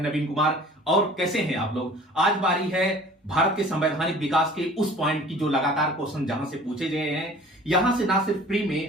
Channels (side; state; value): both; normal; correlation 0.47